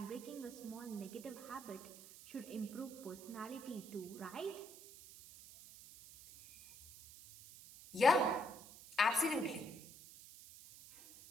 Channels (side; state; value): right; noise; hiss, 17 dB below the sound